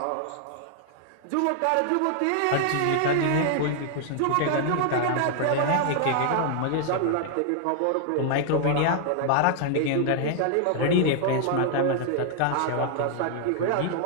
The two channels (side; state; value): both; different; correlation 0.00